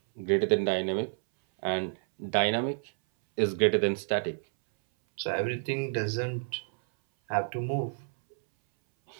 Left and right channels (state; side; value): silent; left; 58 dB below the other